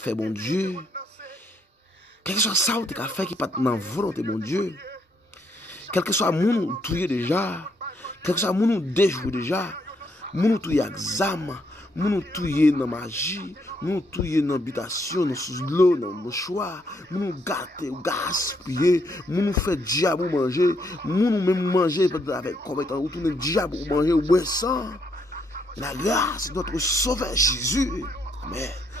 bon Dieu, quel que soit ça que tu as fait qui n'est pas dans la volonté, bon Dieu, quel que soit mon touye déjà, quel que soit mon déjoué déjà, mon touye examen, mon touye dans magie, mon touye dans habitation, dans sous l'eau, dans mouchoir, mon gâter ou gaspiller, mon fait diable manger, mon même manger avec combien ou tout le diable manger ou boire ça. La grâce de notre Sauveur Jésus, mais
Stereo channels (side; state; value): both; normal; correlation 0.73